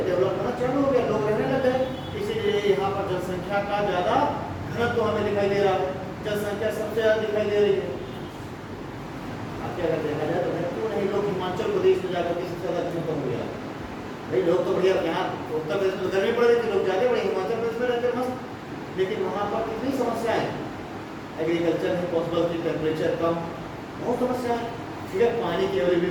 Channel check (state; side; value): identical; both; correlation 1.00